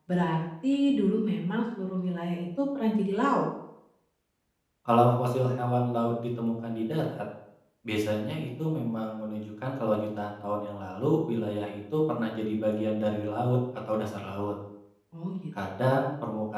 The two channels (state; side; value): identical; both; correlation 1.00